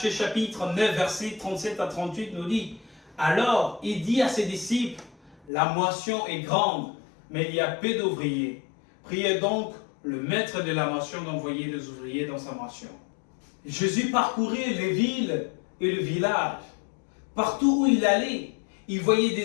chapitre 9, versets 37 à 38, nous dit « Alors, il dit à ses disciples, la moisson est grande, mais il y a peu d'ouvriers. Priez donc le maître de la moisson d'envoyer des ouvriers dans sa moisson. » Jésus parcourait les villes et le village. Partout où il allait, il voyait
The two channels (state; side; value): drops out; right; at 5.5 s